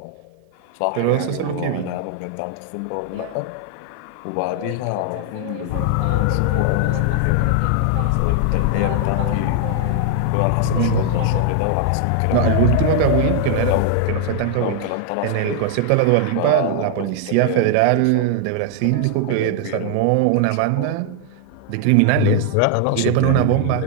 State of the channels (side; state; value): both; different; correlation 0.00